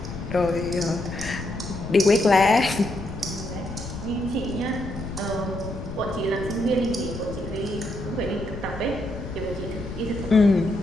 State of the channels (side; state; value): left; noise; rumble, 10 dB below the sound